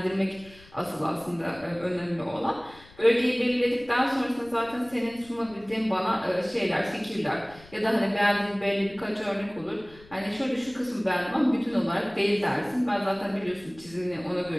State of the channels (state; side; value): noise; left; rumble, 23 dB below the sound